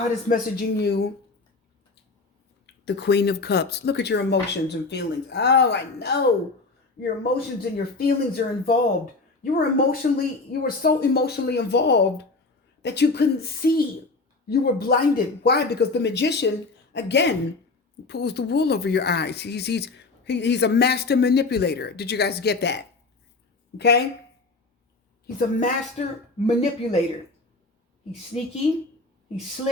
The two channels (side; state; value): right; quieter; 3.6 dB